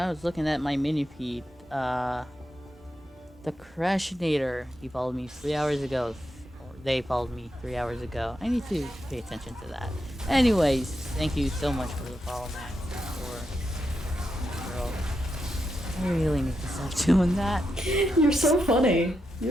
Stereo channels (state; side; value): normal; both; correlation 0.85